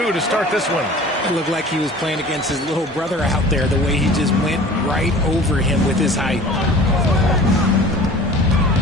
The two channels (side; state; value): both; normal; correlation 0.43